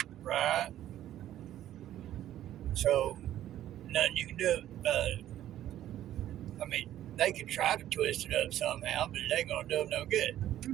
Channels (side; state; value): left; quieter; 12.4 dB